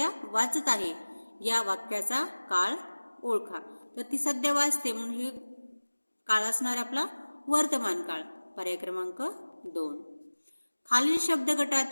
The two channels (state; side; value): inverted; both; correlation -1.00